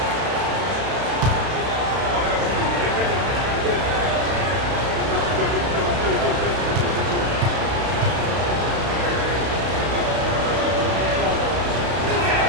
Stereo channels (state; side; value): late; left; 32 ms